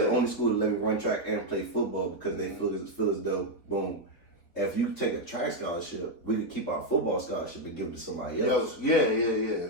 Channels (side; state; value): right; late; 4.1 ms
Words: only school to let me run track and play football because they feel as though, boom, if you take a track scholarship, we could keep our football scholarship and give it to somebody else. Yeah.